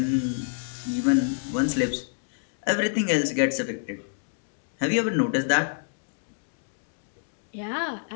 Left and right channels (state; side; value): silent; right; digital silence